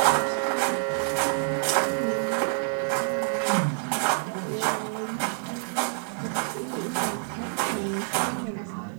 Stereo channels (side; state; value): left; silent; 60 dB below the other